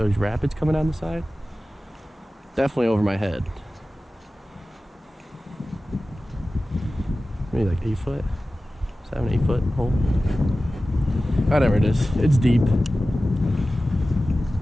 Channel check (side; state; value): both; normal; correlation 0.96